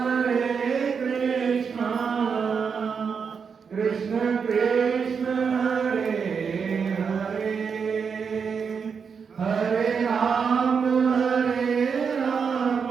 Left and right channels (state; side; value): quieter; left; 6.1 dB